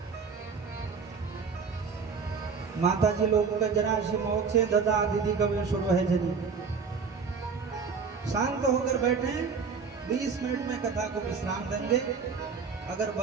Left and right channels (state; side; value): quieter; left; 5.5 dB